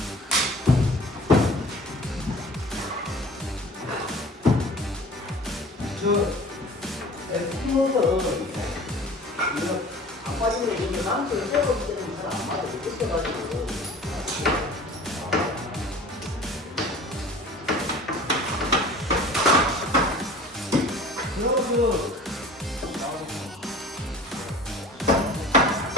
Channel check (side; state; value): both; normal; correlation 0.44